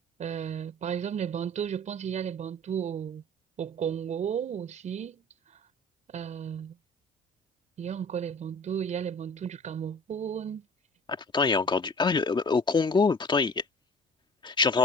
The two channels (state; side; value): normal; both; correlation 0.44